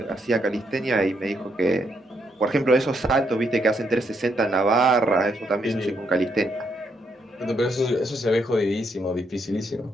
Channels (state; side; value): normal; both; correlation 0.76